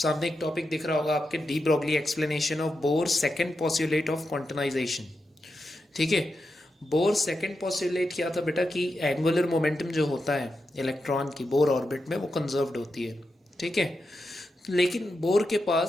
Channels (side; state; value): both; normal; correlation 0.88